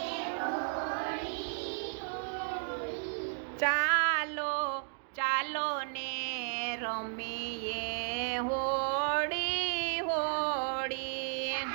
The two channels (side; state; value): left; silent; 55 dB below the other